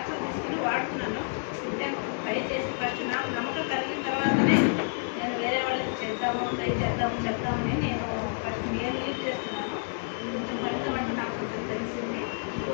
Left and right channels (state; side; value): silent; right; 59 dB below the other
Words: తీసుకుని వాడుతున్నాను అంటే ట్రై చేసి ఫస్ట్ నాకు నమ్మకం కలిగిన తర్వాతనే నేను వేరే వాళ్ళకి చేద్దాము ట్రై చేద్దాము చెప్తామని నేను ఫస్ట్ మీరు లీడ్ చేస్తున్నాను కొంచెం ఫలితం అంటే నాకు కొంచెం తెలిసింది